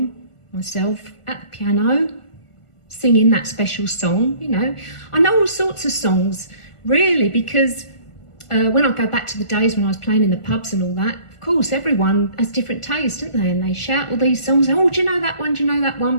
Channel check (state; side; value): late; right; 1.4 ms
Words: myself at the piano singing that special song. You know, I know all sorts of songs, really, because when I go back to the days when I was playing in the pubs and all that, of course, everyone has different tastes, don't they? And they shout all these songs, oh, do you know that one? Do you know that